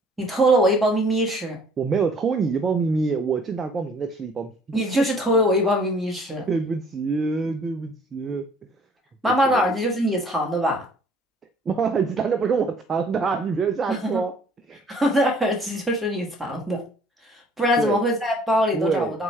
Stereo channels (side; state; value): both; normal; correlation 0.56